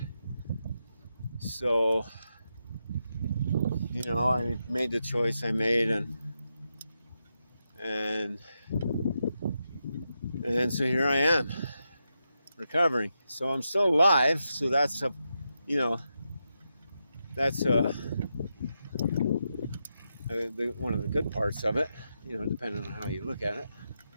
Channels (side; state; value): both; inverted; correlation -0.86